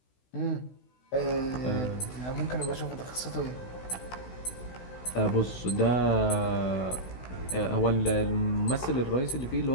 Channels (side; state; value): right; late; 16 ms